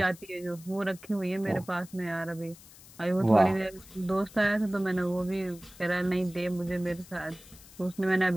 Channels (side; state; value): left; noise; hiss, 21 dB below the sound